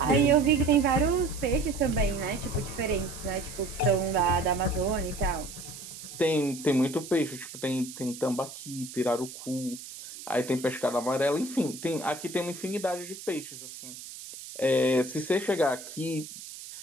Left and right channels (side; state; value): right; noise; hiss, 13 dB below the sound